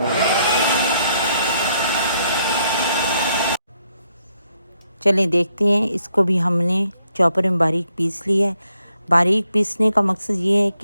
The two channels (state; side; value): inverted; both; correlation -0.75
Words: चलें देखते हैं। इसको भी हमने चॉपर में बारीक पीस लिया है। बारीक पीसने का मकसद ये है